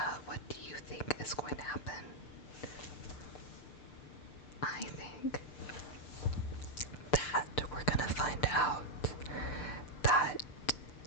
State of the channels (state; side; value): late; right; 6.7 ms